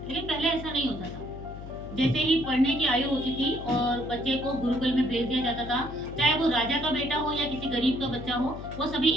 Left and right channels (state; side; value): noise; left; hum, 11 dB below the sound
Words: लेकिन पहले ऐसा नहीं होता था। जैसे ही पढ़ने की आयु होती थी और बच्चे को गुरुकुल में भेज दिया जाता था, चाहे वो राजा का बेटा हो या किसी गरीब का बच्चा हो, वो सभी